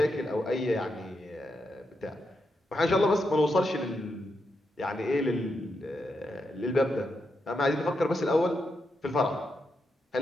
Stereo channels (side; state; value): both; normal; correlation 0.84